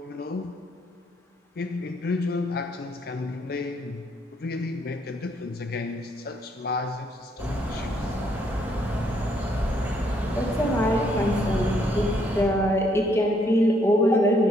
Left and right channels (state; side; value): normal; both; correlation 0.70